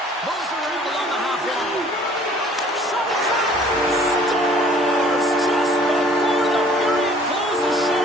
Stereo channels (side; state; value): both; normal; correlation 0.54